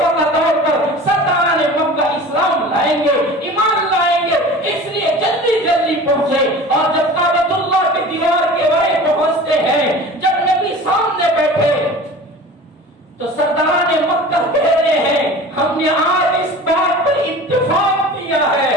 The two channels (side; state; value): both; normal; correlation 0.39